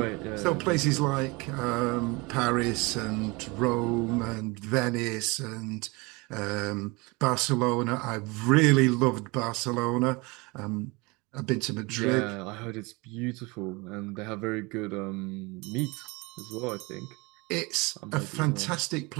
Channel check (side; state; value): left; quieter; 26.0 dB